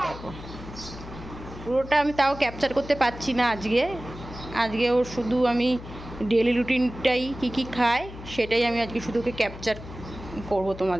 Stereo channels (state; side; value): noise; left; hum, 13 dB below the sound